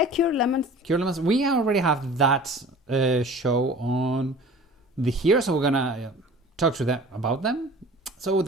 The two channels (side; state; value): both; normal; correlation 0.43